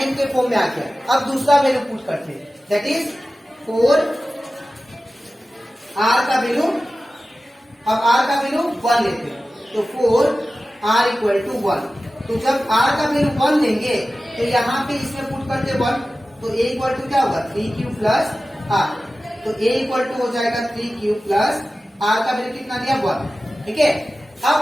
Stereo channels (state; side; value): normal; both; correlation 0.95